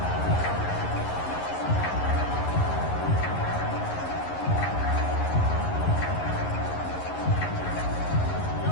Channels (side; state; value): right; late; 11 ms